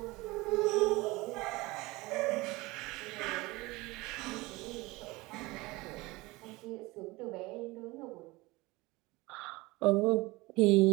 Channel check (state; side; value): quieter; left; 22.1 dB